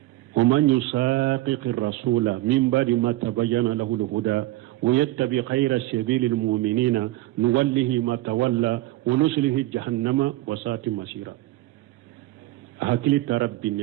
ومن يساقق الرسول من بعد ما تبين له الهدى ويتبع خير سبيل المؤمنين نوله ما تولى ونسله جهنم وساءت مصيرا hakili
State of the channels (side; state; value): left; quieter; 17.0 dB